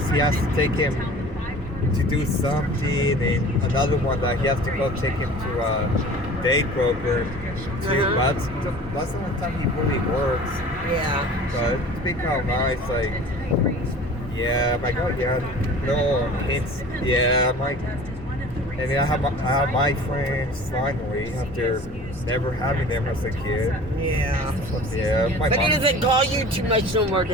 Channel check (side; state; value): both; normal; correlation 0.43